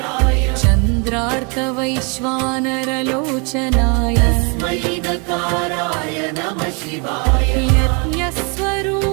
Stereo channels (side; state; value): left; quieter; 33.3 dB